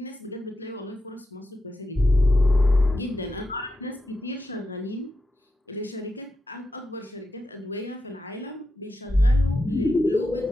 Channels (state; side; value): normal; both; correlation 0.87